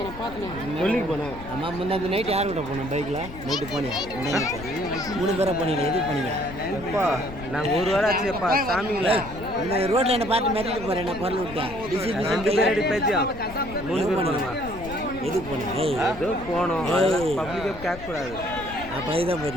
நான் பார்த்தேன். சொல்லிக்கு போனேன். அம்மா முன்னாடி நைட்டு யார் கூட போனோம் பைக்கில்? நைட்டு போனேன். 3 பேரை போனீங்களா? எதுக்கு போனீங்க? எப்பா நாங்கள் ஒரு வாரம் ஆச்சுப்பா சாமிங்களா. இந்த ரோட்டில் என்ன பார்த்து மிரட்டிட்டு போகிறேன். என்ன பொருள் விட்டேன். 2 பேர் அடி பேச்சியா 3 பேர் போனோமா? எதுக்கு போனேன்? ஏதோ போனோம். பப்ளிக்காக கேட்கக்கூடாது. அப்போ இதுதான்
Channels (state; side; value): noise; left; rumble, 13 dB below the sound